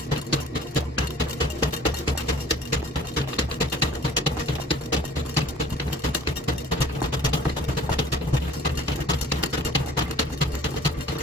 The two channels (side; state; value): both; normal; correlation 0.50